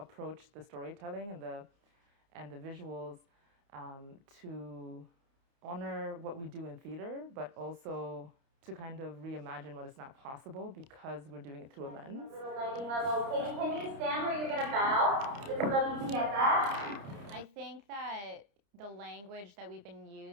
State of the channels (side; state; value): left; late; 30 ms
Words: the storytelling and the visuals to honor what we do in theater, but also to kind of reimagine what is not possible because we're doing it through a lens. Lighting level. Katie, can you stand where you're going to bow? Just so that we can get that. I think that the language that we've been